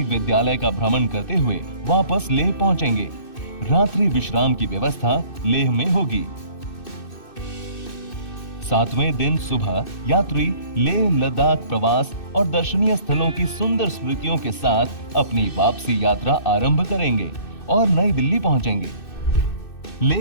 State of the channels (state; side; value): late; right; 2.6 ms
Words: विद्यालय का भ्रमण करते हुए वापस लेह पहुंचेंगे। रात्रि विश्राम की व्यवस्था लेह में होगी। 7वें दिन सुबह यात्री लेह लद्दाख प्रवास और दर्शनीय स्थलों की सुंदर स्मृतियों के साथ अपनी वापसी यात्रा आरंभ करेंगे और नई दिल्ली पहुंचेंगे।